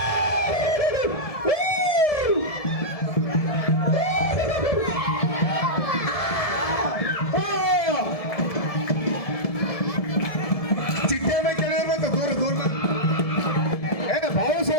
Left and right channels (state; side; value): late; right; 1.7 ms